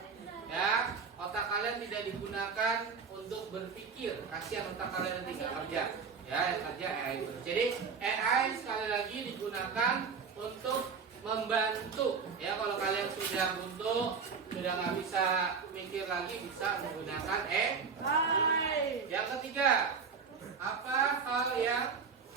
ya, otak kalian tidak digunakan untuk berpikir. Kasihan otak kalian nanti nggak kerja. Ya, yang kerja AI terus. Jadi AI sekali lagi digunakan untuk membantu. Ya, kalau kalian sudah buntu, sudah nggak bisa mikir lagi, bisa menggunakan AI. Yang ketiga, apa hal yang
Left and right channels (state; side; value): quieter; left; 5.7 dB